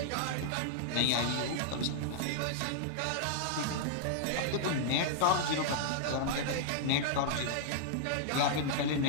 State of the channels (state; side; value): different; both; correlation -0.01